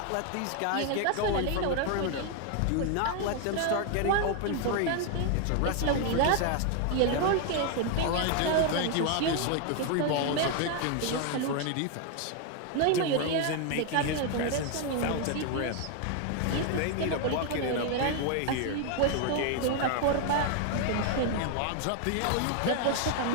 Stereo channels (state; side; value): different; both; correlation 0.01